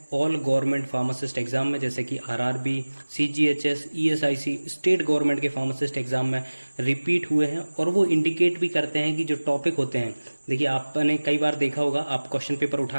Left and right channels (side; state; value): both; inverted; correlation -1.00